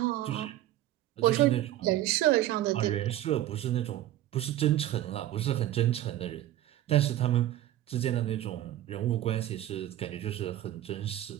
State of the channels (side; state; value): left; quieter; 13.6 dB